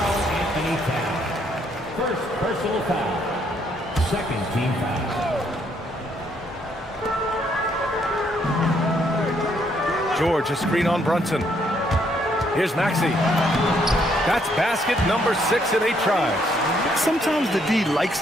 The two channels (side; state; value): both; normal; correlation 0.70